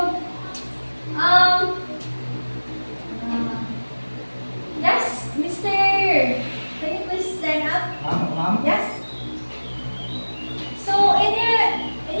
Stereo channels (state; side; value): inverted; both; correlation -1.00